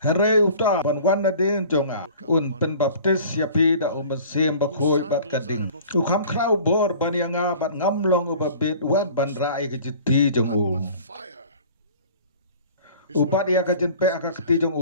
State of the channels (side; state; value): both; inverted; correlation -0.46